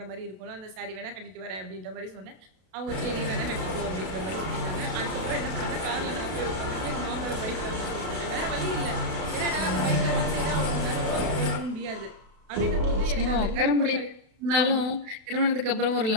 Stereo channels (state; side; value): late; left; 32 ms